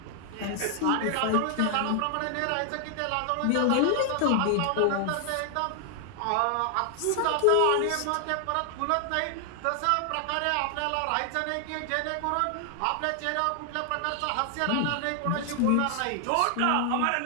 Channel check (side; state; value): both; different; correlation 0.00